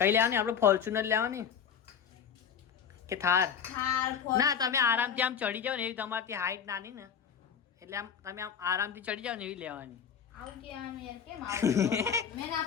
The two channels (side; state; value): right; quieter; 7.5 dB